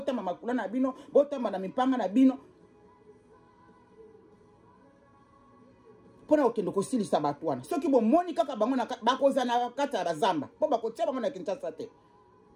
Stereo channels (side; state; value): both; identical; correlation 1.00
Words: makula na bino botamba na mipanga na bino pona okende kosilisa bato wana soki bomoni kaka bango bakoza na kati ya bazamba po bakotia bango na Kinshasa te